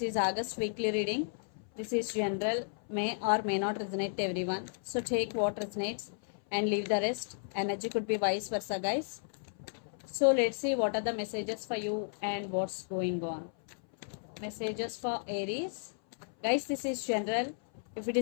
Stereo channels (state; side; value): silent; right; 55 dB below the other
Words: is August weekly reading. This is general, may or may not resonate to everyone. So take what resonates and leave the rest. Energy could be vice versa, guys. So let's see what are the messages for you and what's going on. Messages for Aries. Guys, this is general. If it